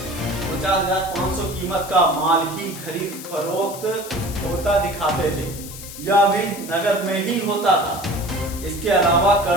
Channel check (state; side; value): noise; left; hiss, 13 dB below the sound